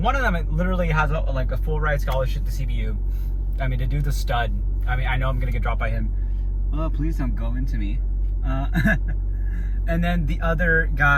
One of them literally has a full ride scholarship to CBU. I mean, to do the stud. I mean, I know I'm gonna get dropped by him. Oh, please don't go into me. And then the other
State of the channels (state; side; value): identical; both; correlation 1.00